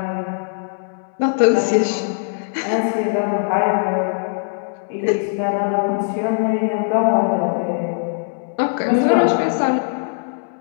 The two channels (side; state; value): right; silent; digital silence